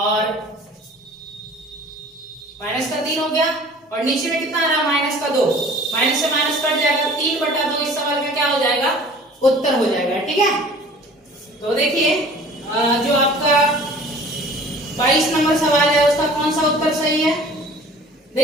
माइनस का 3 हो गया और नीचे में कितना आ रहा है, माइनस का 2। माइनस से माइनस कट जाएगा, 3/2 इस सवाल का क्या हो जाएगा, उत्तर हो जाएगा, ठीक है। तो देखिए जो आपका 22 नंबर सवाल है उसका कौन सा उत्तर सही है।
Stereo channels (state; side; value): normal; both; correlation 0.47